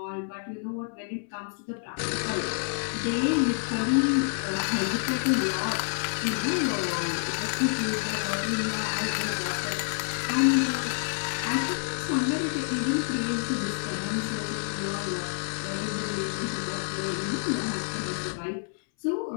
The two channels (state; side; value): silent; right; 59 dB below the other